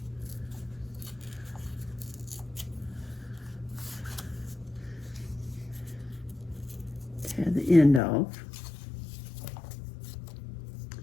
Tear the end off.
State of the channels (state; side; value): drops out; right; at 8.0 s